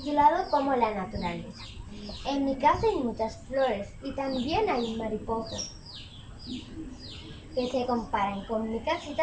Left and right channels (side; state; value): both; identical; correlation 1.00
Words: Como la naturaleza. En mi casa hay muchas flores y también hay mariposas que se comparan con mi